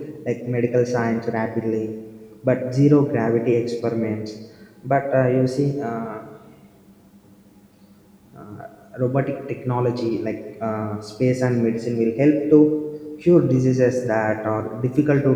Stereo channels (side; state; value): both; identical; correlation 1.00